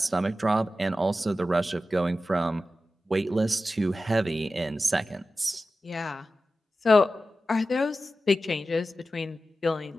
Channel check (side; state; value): both; normal; correlation 0.93